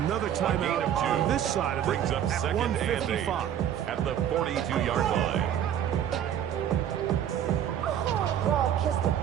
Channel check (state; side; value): quieter; left; 10.0 dB